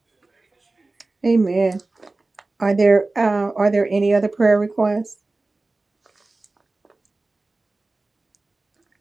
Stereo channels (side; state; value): left; quieter; 3.2 dB